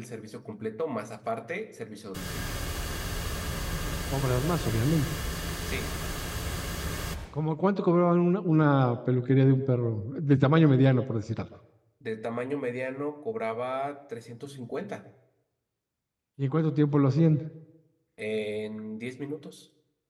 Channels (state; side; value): identical; both; correlation 1.00